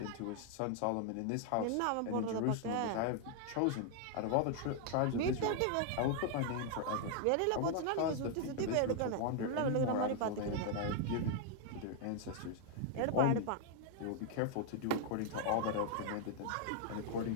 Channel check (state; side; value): different; both; correlation 0.00